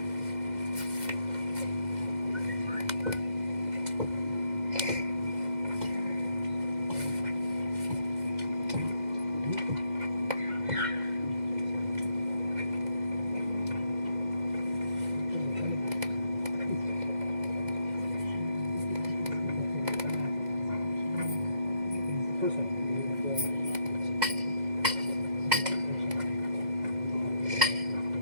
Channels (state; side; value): late; left; 2.0 ms